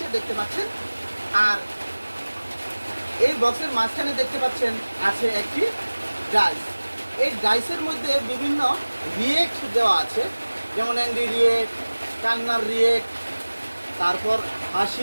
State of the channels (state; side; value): inverted; both; correlation -1.00